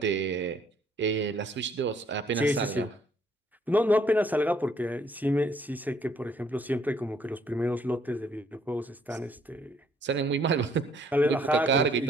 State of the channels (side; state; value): both; normal; correlation 0.65